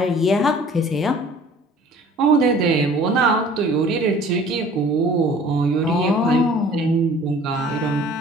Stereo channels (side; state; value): both; normal; correlation 0.50